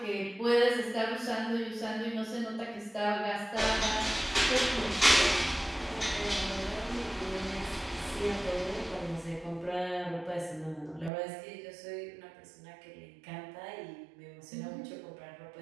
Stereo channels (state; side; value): drops out; left; at 11.1 s